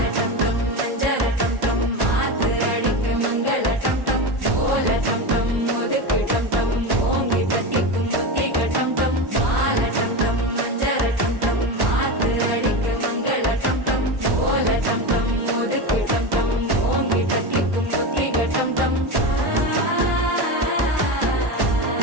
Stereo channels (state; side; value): late; left; 1.1 ms